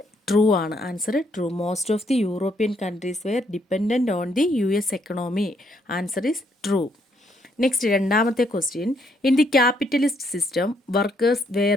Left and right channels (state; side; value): normal; both; correlation 0.72